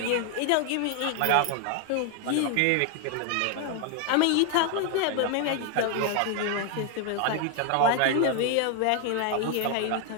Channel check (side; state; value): both; different; correlation 0.01